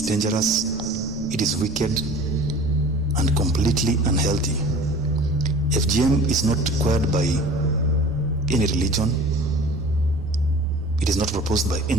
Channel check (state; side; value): noise; right; rumble, 14 dB below the sound